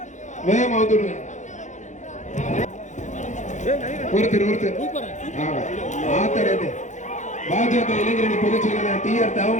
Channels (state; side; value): late; right; 0.35 ms